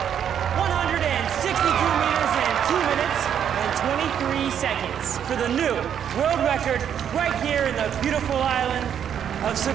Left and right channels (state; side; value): quieter; left; 8.9 dB